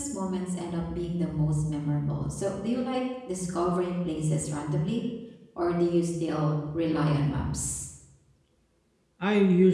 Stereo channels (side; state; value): both; identical; correlation 1.00